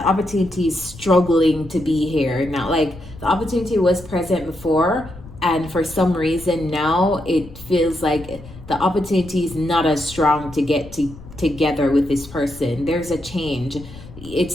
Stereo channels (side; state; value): left; noise; rumble, 17 dB below the sound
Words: opportunity is struggling to be here now. Like, the opportunity was present before, and for some reason now it feels like the opportunity is not as strong to get together with this person. There's a change.